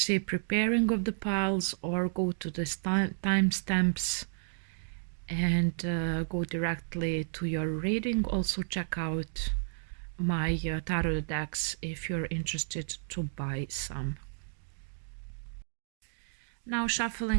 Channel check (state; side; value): silent; left; digital silence